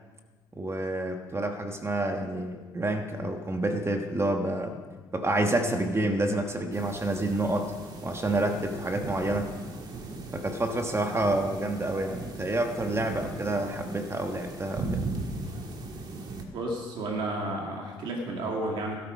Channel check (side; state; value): both; normal; correlation 0.70